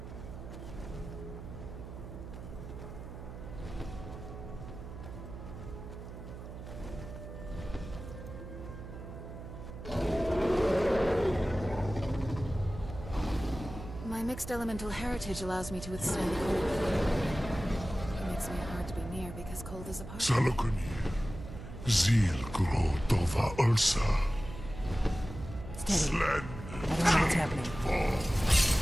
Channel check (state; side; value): noise; right; hum, 11 dB below the sound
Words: My mixed elemental heritage allows me to withstand the cold. It makes me hard to be near because cold is a part of me. Salakuni, Zil Gro Dova Ursa. Steady. I don't know what's happening.